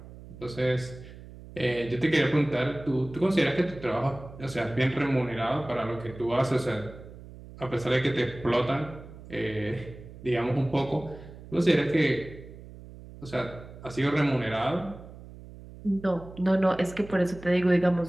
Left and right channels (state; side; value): noise; right; hum, 16 dB below the sound